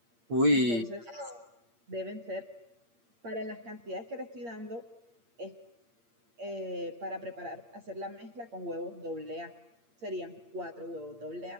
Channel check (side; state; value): left; late; 8.6 ms